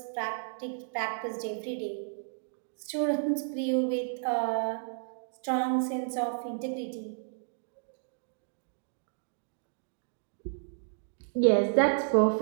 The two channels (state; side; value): silent; left; digital silence